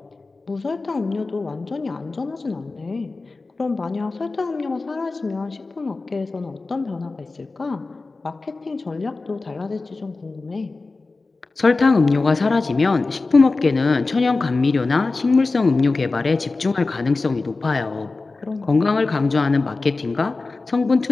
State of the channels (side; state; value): right; quieter; 3.6 dB